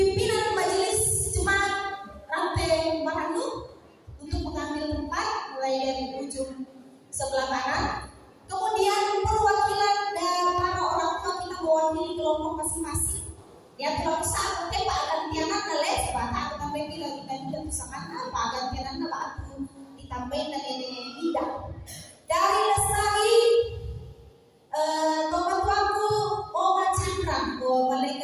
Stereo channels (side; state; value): both; identical; correlation 1.00